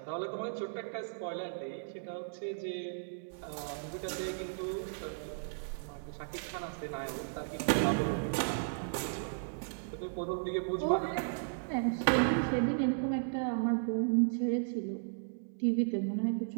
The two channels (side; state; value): left; silent; digital silence